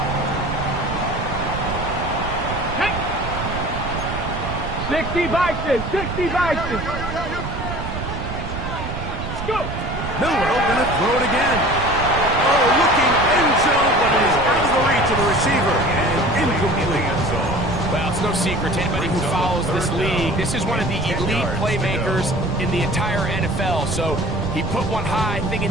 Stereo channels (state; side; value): noise; right; rumble, 6 dB below the sound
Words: Hey. 60 Bison. 60 Bison. Let's go. Milrow going to throw it again. Oh, looking end zone, but it is out of the reach of the receiver, and incomplete. Well, it's no secret to anybody who follows this league. league. This is one of the elite playmakers in the entire NFL. So he put one high, thinking